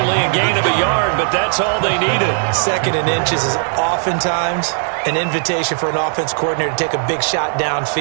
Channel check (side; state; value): left; silent; digital silence